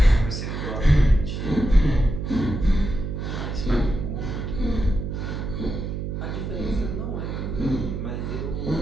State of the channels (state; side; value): noise; right; hum, 4 dB below the sound